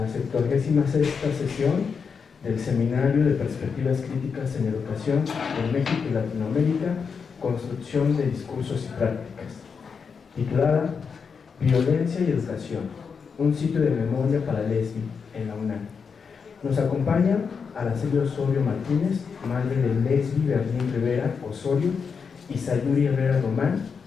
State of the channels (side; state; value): right; quieter; 5.9 dB